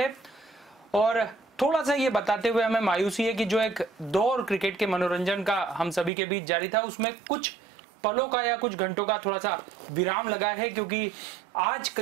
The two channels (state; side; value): drops out; left; at 6.1 s